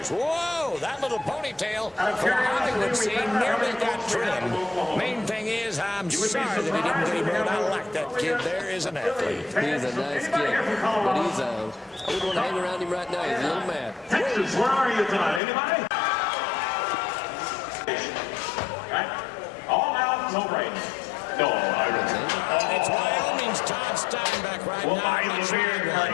Whoa, that little ponytail for the Hollywood scene nearly got trimmed. Main thing is, I'm sorry that he didn't get him out. I like that kid. There is an athlete. He's a nice kid, but I wouldn't want to hang around him right now. He's a little mad. Texas, where are you tonight? Anybody? Right? All out, no break. No, It's Wyoming's Todd Steinbeck right well, now. I live here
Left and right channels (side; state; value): right; drops out; at 15.4 s